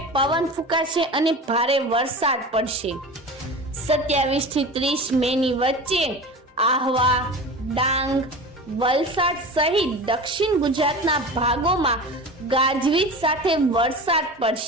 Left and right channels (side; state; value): both; normal; correlation 0.33